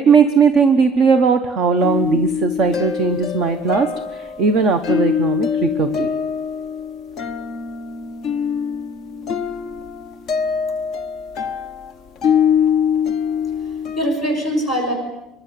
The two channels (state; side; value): normal; both; correlation 0.50